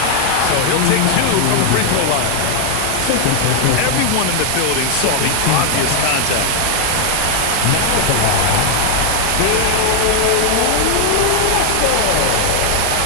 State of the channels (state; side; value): different; both; correlation 0.00